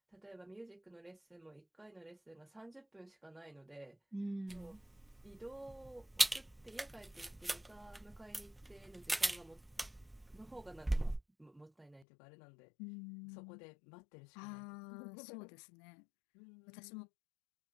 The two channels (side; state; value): right; drops out; at 12.1 s